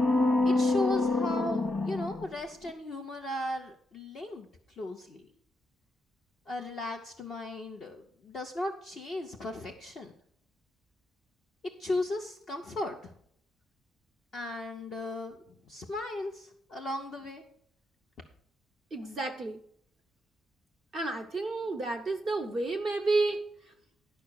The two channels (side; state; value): both; normal; correlation 0.82